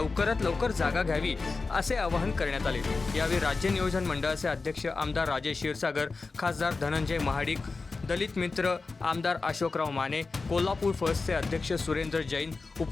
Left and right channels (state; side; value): quieter; right; 4.0 dB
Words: लवकर जागा घ्यावी असे आवाहन करण्यात आले। यावेळी राज्य नियोजन मंडळाचे अध्यक्ष आमदार राजेश क्षीरसागर, खासदार धनंजय महाडिक, दलित मित्र आमदार अशोकराव माने, कोल्हापूर फर्स्टचे अध्यक्ष सुरेंद्र जैन,